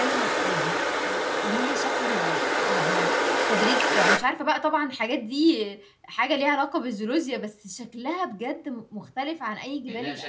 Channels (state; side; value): identical; both; correlation 1.00